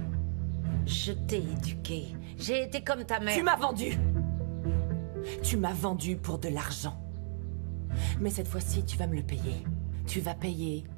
Je t'ai éduqué. J'ai été comme ta mère. Tu m'as vendu! Tu m'as vendu pour de l'argent. Mais cette fois-ci, tu vas me le payer. Tu vas payer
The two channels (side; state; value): left; silent; digital silence